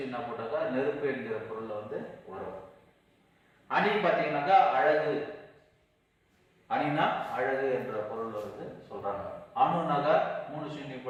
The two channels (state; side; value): identical; both; correlation 1.00